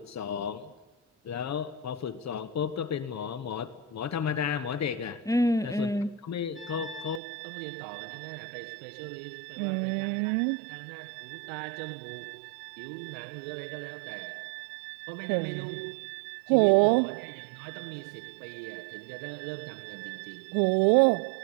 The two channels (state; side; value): drops out; left; at 7.2 s